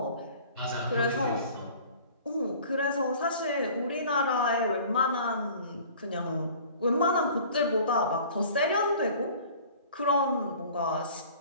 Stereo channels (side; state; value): both; inverted; correlation -0.47